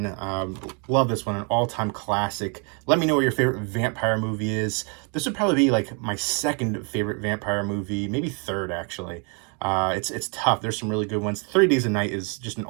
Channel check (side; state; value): left; quieter; 36.7 dB